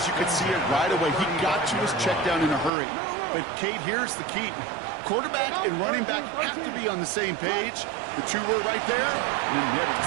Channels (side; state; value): left; drops out; at 2.7 s